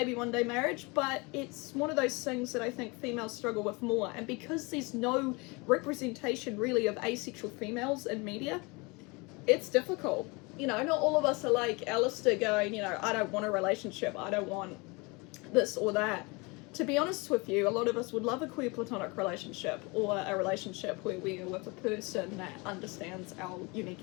one day marriage, but it's one of those things that I think females struggle with more, and because there's no representation really of asexual females in media, it's difficult. You know, not all of us are like Alistair going, you know, I don't want a relationship, I don't want this or that. To be honest with you, a lot of us would love a queer platonic relationship, or a relationship where we are with a person that understands our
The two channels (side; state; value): right; quieter; 27.4 dB